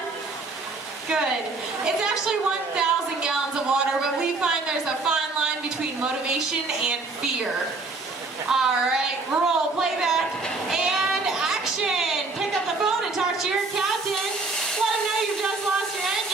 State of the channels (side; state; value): left; quieter; 3.6 dB